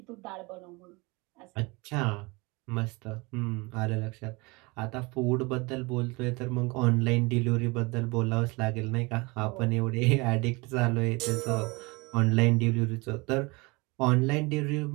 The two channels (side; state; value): left; quieter; 26.0 dB